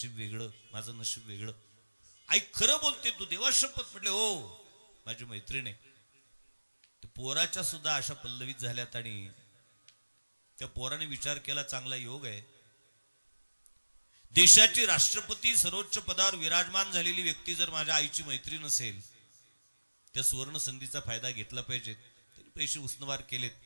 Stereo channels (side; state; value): both; inverted; correlation -1.00